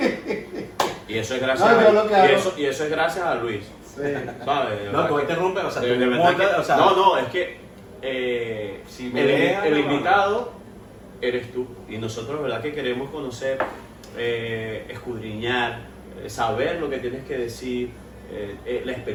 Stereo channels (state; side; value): identical; both; correlation 1.00